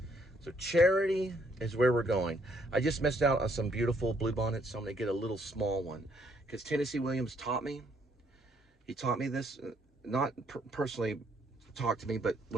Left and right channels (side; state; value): both; normal; correlation 0.69